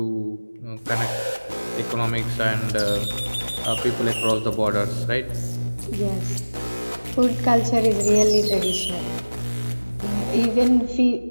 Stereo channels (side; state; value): both; inverted; correlation -1.00